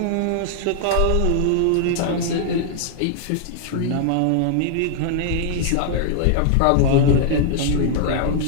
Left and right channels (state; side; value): different; both; correlation -0.01